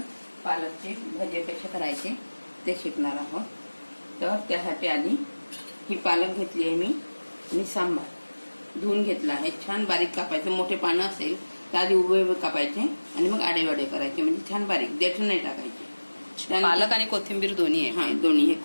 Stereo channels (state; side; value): inverted; both; correlation -1.00